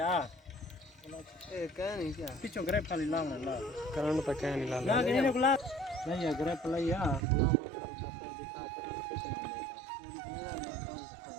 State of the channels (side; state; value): left; drops out; at 7.2 s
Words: ए कह नहीं क्या पिछो ग्रेप खाली लावना ला करंट तो क्या नहीं ला ना के ने गुला नहीं है ग्रेप लइया गुलाम और बस दिखा पर कुछ नहीं मेरा काम